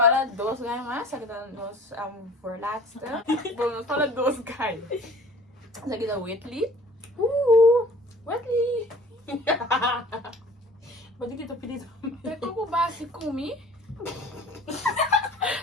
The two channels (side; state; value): both; normal; correlation 0.46